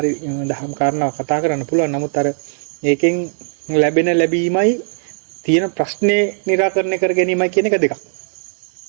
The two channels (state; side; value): silent; left; 67 dB below the other